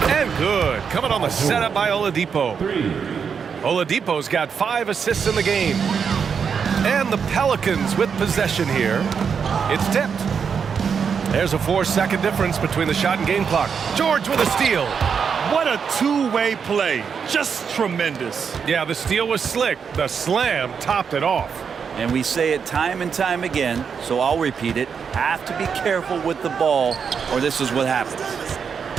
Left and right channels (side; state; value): left; quieter; 6.5 dB